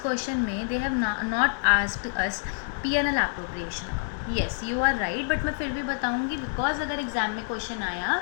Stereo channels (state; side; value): silent; right; digital silence